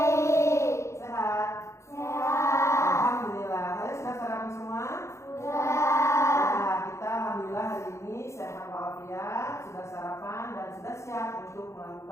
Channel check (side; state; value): right; late; 0.14 ms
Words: Sehat? Sehat. Alhamdulillah. Kalian sudah sarapan semua? Sudah. Nah, kita alhamdulillah hari ini sehat walafiat, sudah sarapan dan sudah siap untuk